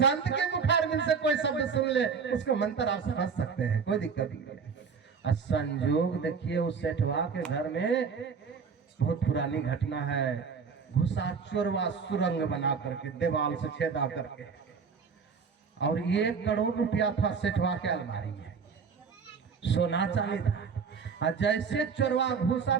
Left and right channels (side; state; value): left; quieter; 5.8 dB